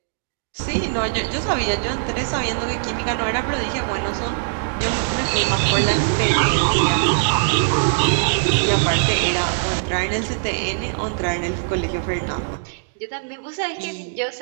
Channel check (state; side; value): silent; left; digital silence